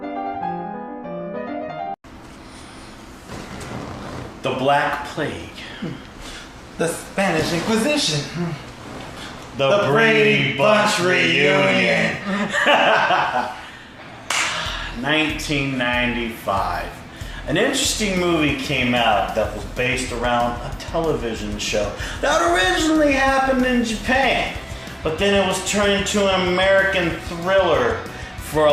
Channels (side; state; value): both; identical; correlation 1.00